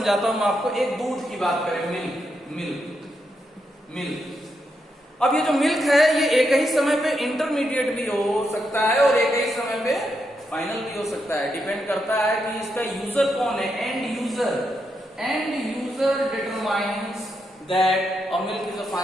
हूं आपको। एक दूध की बात करें, मिल्क। अब ये जो मिल्क है ये एक ही समय पे इंटरमीडिएट भी हो सकता है और एक ही समय पे फाइनल भी हो सकता है। डिपेंड करता है कि इसका यूजर कौन है, and user determines that a milk is a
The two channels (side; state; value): both; normal; correlation 0.82